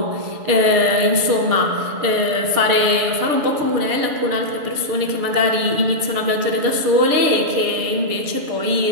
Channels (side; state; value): left; late; 6.9 ms